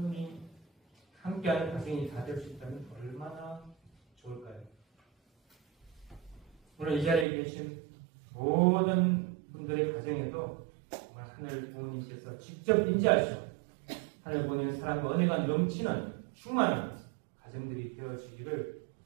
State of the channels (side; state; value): left; drops out; at 7.2 s